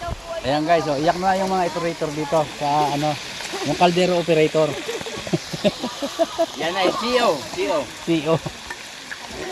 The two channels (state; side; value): identical; both; correlation 1.00